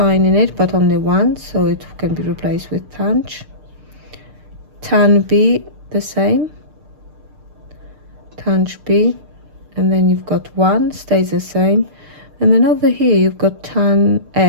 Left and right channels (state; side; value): late; left; 6.7 ms